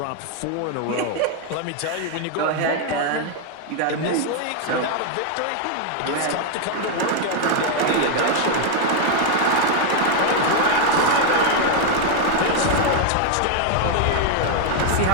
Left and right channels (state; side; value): different; both; correlation 0.01